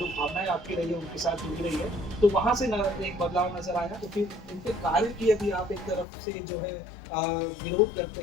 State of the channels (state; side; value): drops out; right; at 6.1 s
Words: भावनाएं आपकी रही है उनके साथ जुड़ी रही है, तो वहां से एक बदलाव नजर आया। तो फिर इनके कार्य की यदि आप एक तरफ से जो है विरोध करते